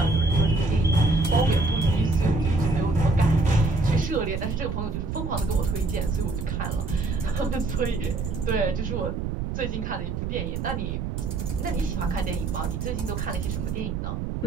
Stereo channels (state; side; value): noise; right; rumble, 3 dB below the sound